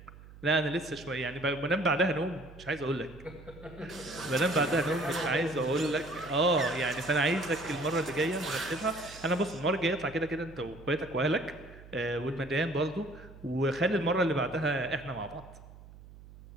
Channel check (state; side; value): noise; right; hum, 19 dB below the sound